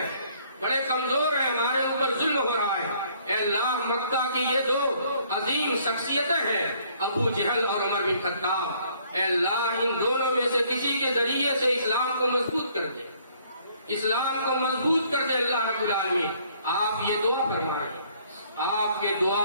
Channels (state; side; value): inverted; both; correlation -0.63